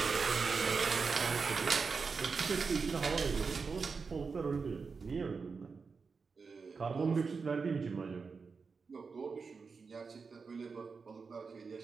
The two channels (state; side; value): quieter; left; 5.0 dB